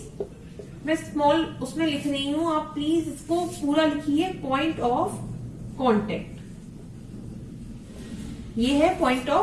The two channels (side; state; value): both; identical; correlation 1.00